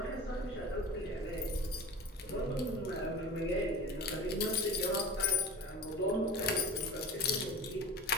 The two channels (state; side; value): normal; both; correlation 0.32